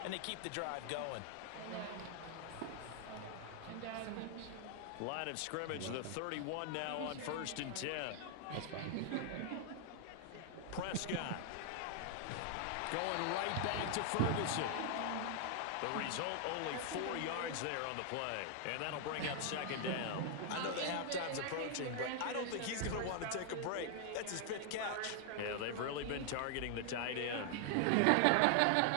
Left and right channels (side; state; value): both; different; correlation 0.00